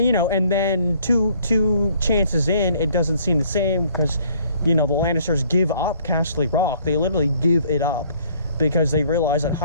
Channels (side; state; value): both; inverted; correlation -0.61